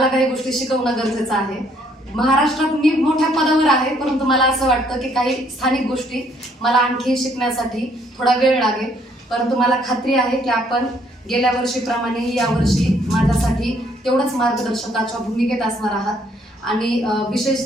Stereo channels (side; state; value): both; normal; correlation 0.66